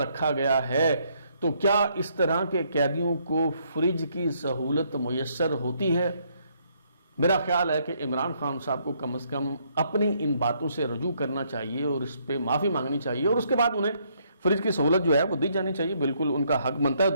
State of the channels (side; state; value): both; inverted; correlation -0.70